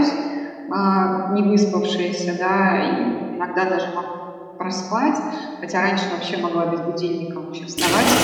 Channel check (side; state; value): both; identical; correlation 1.00